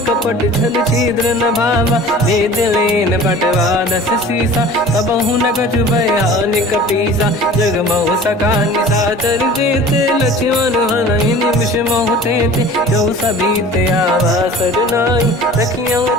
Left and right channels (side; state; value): both; normal; correlation 0.43